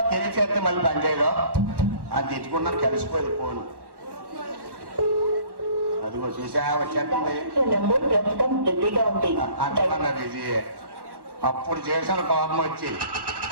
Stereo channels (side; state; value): left; late; 1.1 ms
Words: తెలిసి చేస్తే మళ్ళీ పనిచేయదు అని తెచ్చుకున్నాను. కలిసిపోయింది ఫోన్. అదిగో చూసా వచ్చేస్తుంది అంటున్నా బిజీ. అప్పుడు చేసిన కోపం వచ్చి